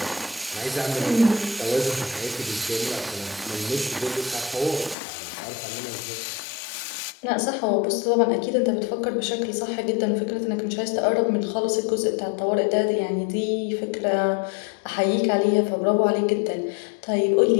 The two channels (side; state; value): right; drops out; at 5.0 s